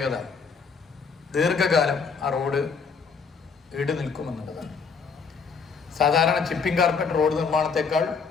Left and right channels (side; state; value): right; quieter; 5.4 dB